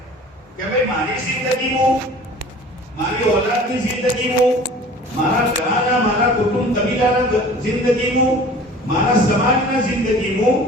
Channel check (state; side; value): normal; both; correlation 0.44